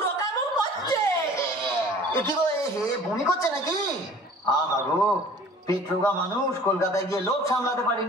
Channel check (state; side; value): normal; both; correlation 0.48